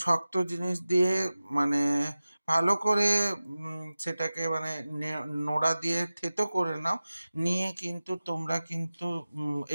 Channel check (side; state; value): both; inverted; correlation -0.96